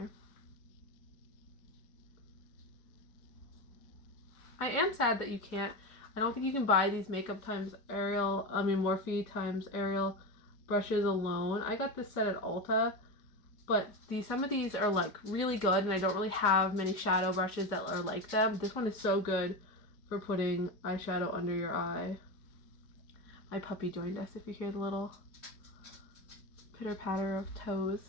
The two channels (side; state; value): right; late; 4.9 ms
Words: I am sad that you can't, I don't think you can buy these Makeup x Ariel, Morphe x Ariel brushes alone. I got this set at Ulta, but some of these are like really good, and I don't really have many shadow brushes that are like them. This one is so good for putting eyeshadow under your eye. My puppy joined us, if you hear the little pitter patter of toes.